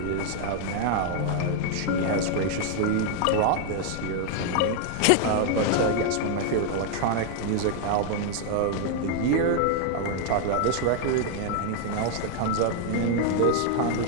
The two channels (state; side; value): different; both; correlation 0.00